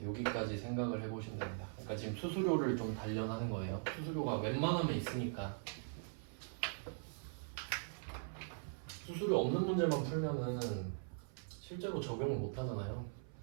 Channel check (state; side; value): silent; left; 50 dB below the other